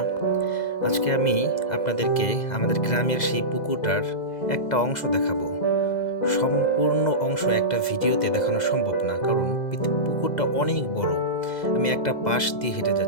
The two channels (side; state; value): right; late; 2.0 ms